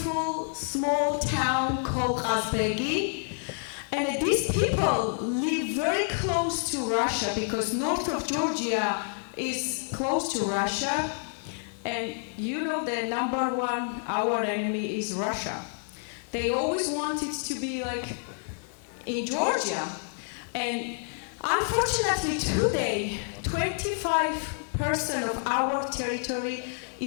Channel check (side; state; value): right; silent; 59 dB below the other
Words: small town called Azbegi. And these people live very close to Russia because north of Georgia is close to Russia. And you know the number one, our enemy is Russia. They always wanted to be like in Georgia. And unfortunately today, 25% of our territory